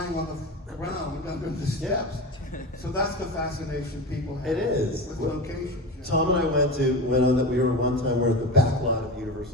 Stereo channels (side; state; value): both; normal; correlation 0.26